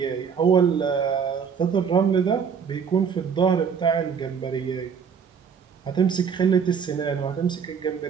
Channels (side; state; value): left; quieter; 6.7 dB